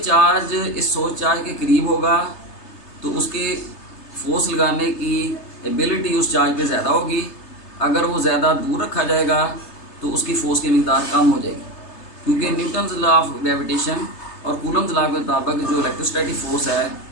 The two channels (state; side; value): late; right; 3.3 ms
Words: चार्ज इस सोर्स चार्ज के करीब होगा तो उसके फोर्स लगाने की एबिलिटी उस चार्ज पे ज़्यादा होगी। अगर वो ज़्यादा दूर रखा जाएगा तो उसकी फोर्स की मिकदार कम हो जाएगी, क्योंकि न्यूटन्स लॉ ऑफ ग्रेविटेशन और कूलम्स लॉ के मुताबिक जो इलेक्ट्रोस्टैटिक फोर्स है